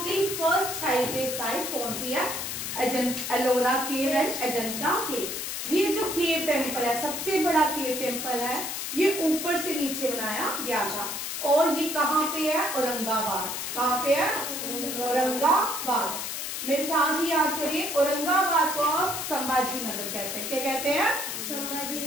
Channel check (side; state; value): left; noise; hiss, 4 dB below the sound